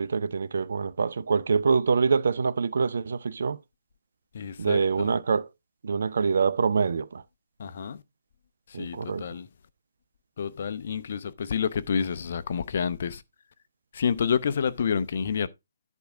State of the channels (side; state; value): both; inverted; correlation -0.82